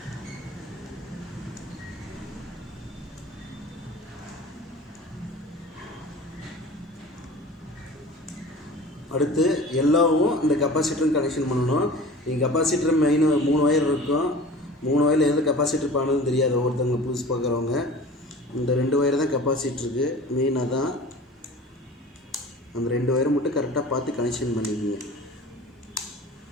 அடுத்து எல்லோவும் இந்த கெப்பாசிட்டரும் கனெக்ஷன் பண்ணணும். இங்கே கெப்பாசிட்டர் மெயின் 3 ஒயர் இருக்கும். 3 ஒயரில் எது கெப்பாசிட்டர் பண்ணணும்னு தெரியாது ஒவ்வொருத்தவங்க புதுசு பார்க்குறவங்க. இந்த 2 ஒயர் தான் கெப்பாசிட்டருக்கு மெயினாக தான். அந்த 2 ஒயரை மட்டும் கரெக்டாக பார்த்து கனெக்ஷன் பண்ணிக்கோங்க.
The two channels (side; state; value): both; normal; correlation 0.40